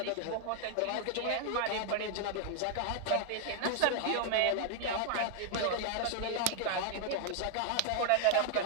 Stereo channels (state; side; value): different; both; correlation 0.00